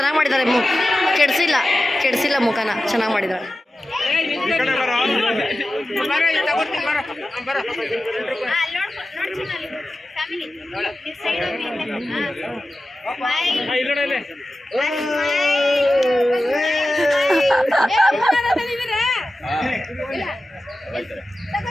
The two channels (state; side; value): normal; both; correlation 0.94